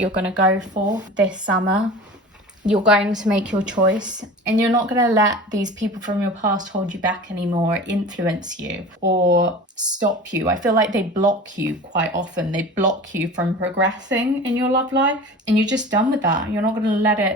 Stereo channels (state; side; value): normal; both; correlation 0.36